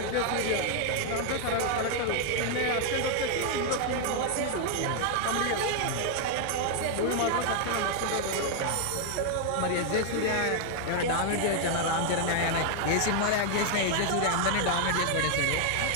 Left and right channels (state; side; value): different; both; correlation 0.00